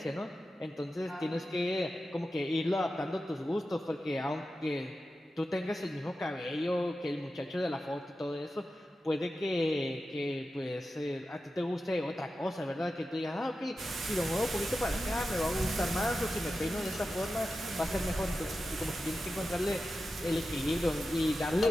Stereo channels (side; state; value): both; normal; correlation 0.92